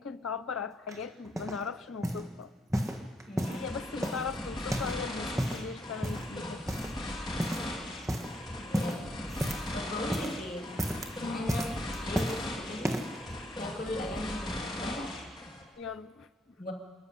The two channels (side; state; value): both; normal; correlation 0.74